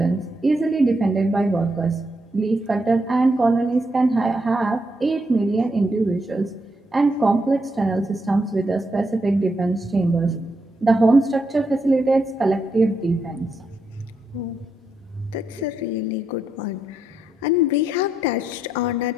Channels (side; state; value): both; normal; correlation 0.80